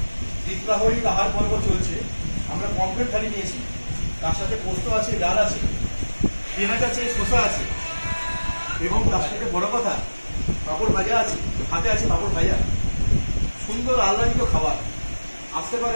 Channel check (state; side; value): inverted; both; correlation -1.00